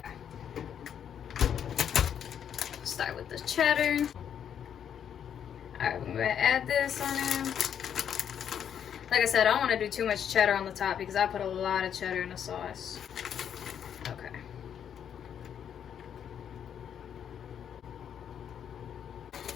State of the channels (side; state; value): right; quieter; 8.7 dB